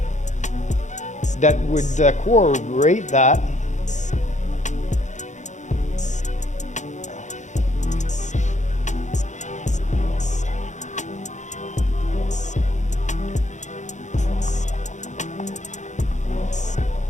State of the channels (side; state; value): right; late; 0.35 ms